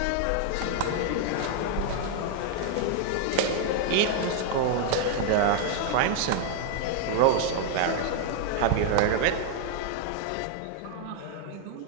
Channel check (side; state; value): both; different; correlation 0.00